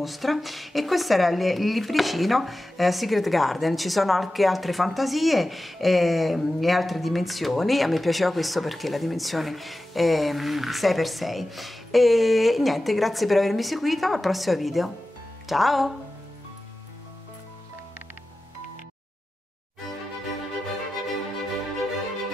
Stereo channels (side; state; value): both; normal; correlation 0.94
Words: e questo era il libricino Secret Garden. Ci sono anche altre fantasie e altre dimensioni. A me piaceva questo perché la dimensione è 6x6. E niente, grazie per avermi seguito, al prossimo video, ciao!